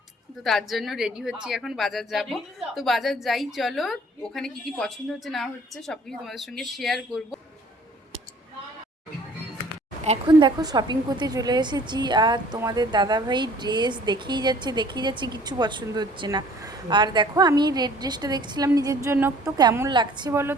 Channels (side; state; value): both; normal; correlation 0.53